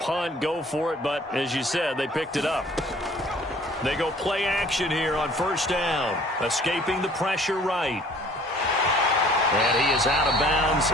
go for it. But as you said, they picked it up. They go play action here on first down. Escaping the pressure right. And he is out of bounds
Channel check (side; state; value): both; normal; correlation 0.53